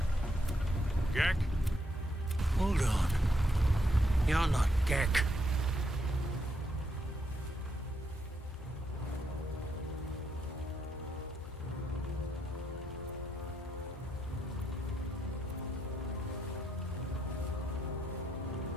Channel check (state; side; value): normal; both; correlation 0.78